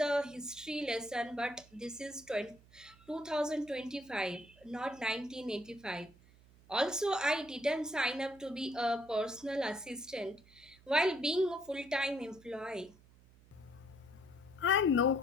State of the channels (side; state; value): right; noise; hum, 25 dB below the sound